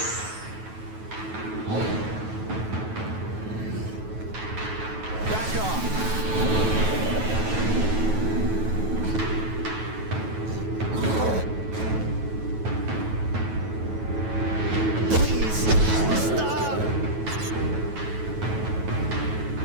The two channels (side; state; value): left; late; 9.2 ms